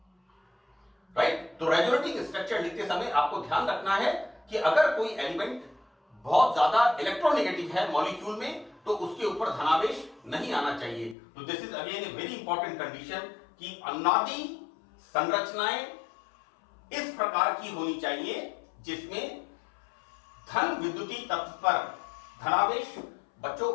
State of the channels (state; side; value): drops out; right; at 11.2 s